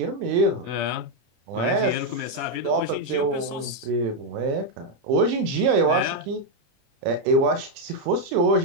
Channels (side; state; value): left; late; 30 ms